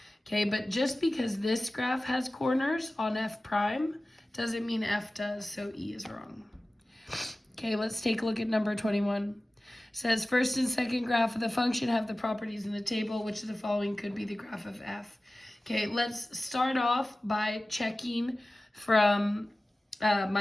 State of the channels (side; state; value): both; normal; correlation 0.96